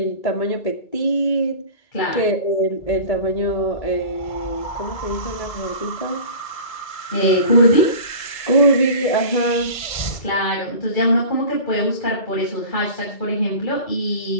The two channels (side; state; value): right; late; 2.2 ms